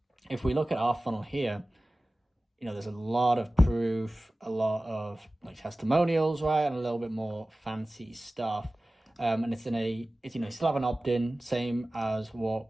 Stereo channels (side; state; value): both; normal; correlation 0.97